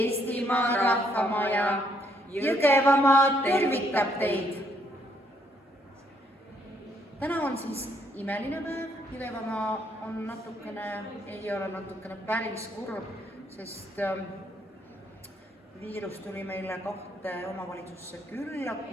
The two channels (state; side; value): normal; both; correlation 0.71